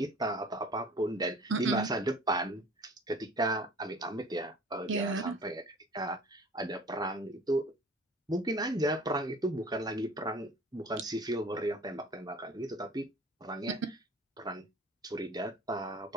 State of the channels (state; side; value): normal; both; correlation 0.46